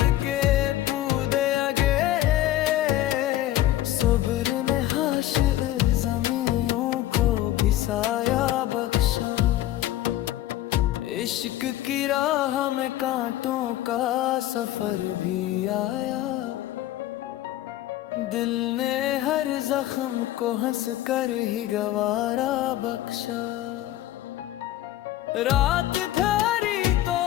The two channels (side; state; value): right; quieter; 14.2 dB